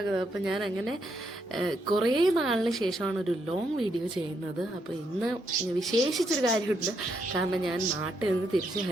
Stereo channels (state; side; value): normal; both; correlation 0.77